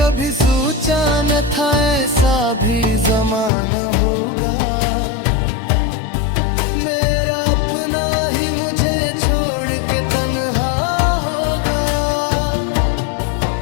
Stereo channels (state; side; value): drops out; right; at 3.5 s